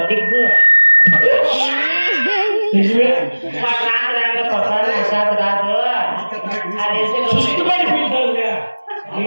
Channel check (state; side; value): inverted; both; correlation -1.00